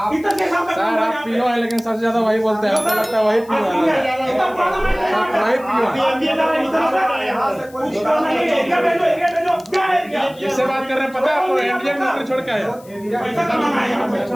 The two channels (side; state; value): left; noise; hiss, 25 dB below the sound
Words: इतने के साथ का काम सर आप पीओ है, लेकिन सबसे ज्यादा वही बोलते हैं, आपको लगता है वही पीओ है। इतना पुराना माइंस है यहाँ पे। वही पीओ है। यहाँ से कुछ नहीं, एरिया भेजो, क्या एरिया? किससे बात कर रहे हैं पता है आपको? इंडियन मिलिट्री छोड़ के आए हो। पैसा कमाना है यहाँ पे।